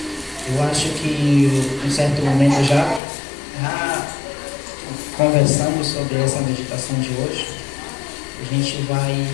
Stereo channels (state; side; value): drops out; right; at 3.0 s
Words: Eu acho que em certo momento já conversamos sobre essa meditação de hoje. A gente vai